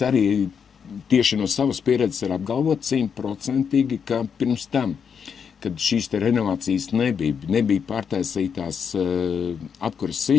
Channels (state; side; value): quieter; right; 6.9 dB